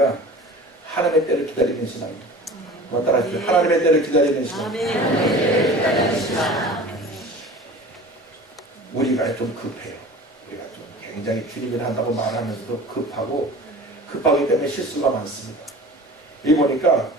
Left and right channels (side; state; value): both; normal; correlation 0.39